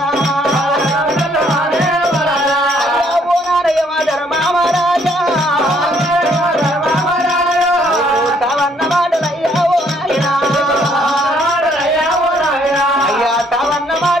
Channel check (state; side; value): normal; both; correlation 0.66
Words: పోనారయ్య మా ధర్మామరాజా